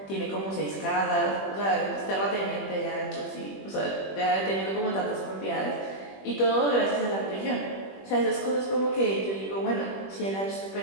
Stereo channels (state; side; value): late; right; 21 ms